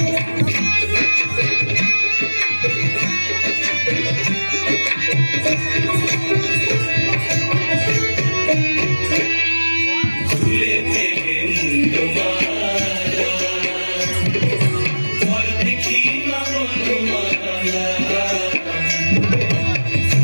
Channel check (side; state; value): both; inverted; correlation -1.00